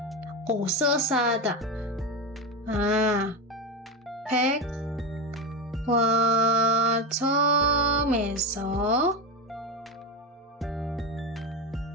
옷을 사다. 백화점에서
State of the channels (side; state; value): both; normal; correlation 0.15